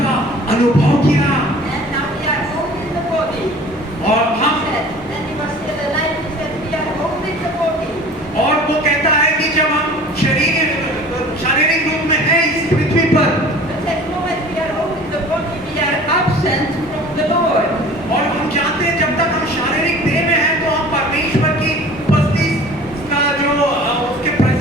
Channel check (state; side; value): normal; both; correlation 0.45